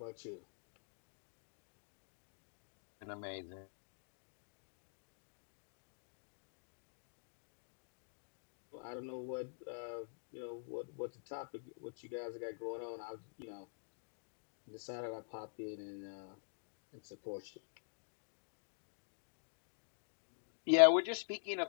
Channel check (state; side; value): silent; right; digital silence